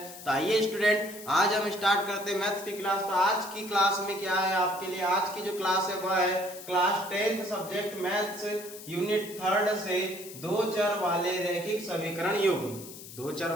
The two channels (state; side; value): noise; left; hiss, 14 dB below the sound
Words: तो आइए स्टूडेंट, आज हम स्टार्ट करते हैं मैथ्स की क्लास। तो आज की क्लास में क्या है आपके लिए, आज की जो क्लास है वह है class 10th subject maths unit 3 से दो चर वाले रैखिक समीकरण युग्म। दो चर